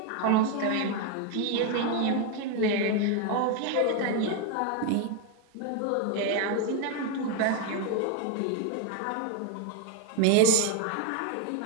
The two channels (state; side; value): different; both; correlation 0.01